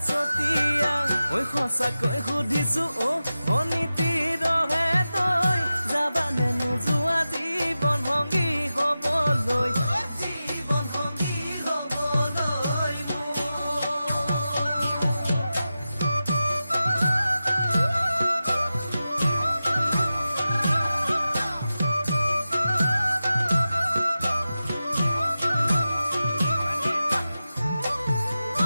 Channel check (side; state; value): both; inverted; correlation -0.93